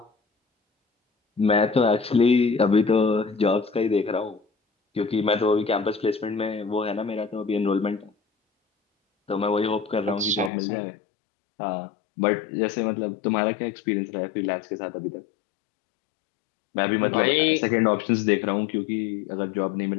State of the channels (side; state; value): right; drops out; at 10.5 s